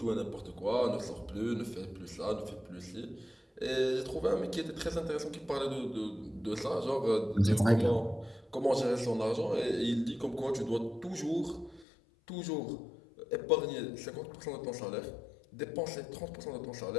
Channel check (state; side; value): drops out; right; at 11.9 s